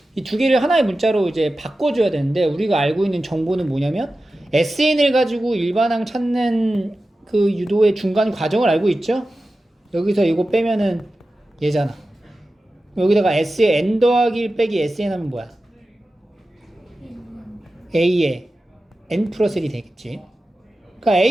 이 두 개를 하나의 문자로 이제 바꿔줘야 되는데 우리가 알고 있는 정보는 뭐냐면 SN을 가지고 일반항 찾는 그 유도의 중간 과정을 알고 있죠? 여기서 이거 빼면은 얘잖아. 여기다가 S에 N 더하기 1 빼기 SN 하면 뭐야? A에 N 플러스 1이 되겠지. 그러니까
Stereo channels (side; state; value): both; normal; correlation 0.94